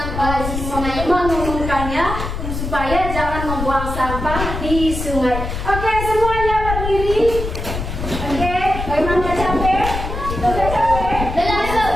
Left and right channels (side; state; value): left; noise; rumble, 5 dB below the sound